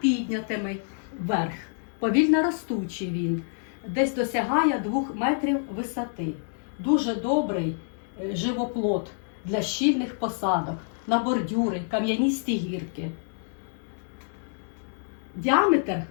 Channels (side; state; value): right; silent; digital silence